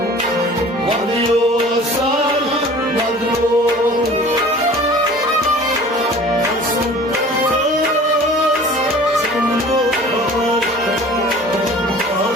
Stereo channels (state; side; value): normal; both; correlation 0.45